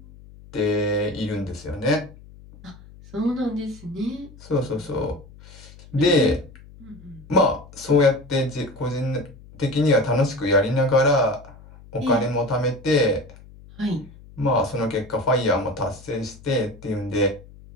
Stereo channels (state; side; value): noise; left; hum, 21 dB below the sound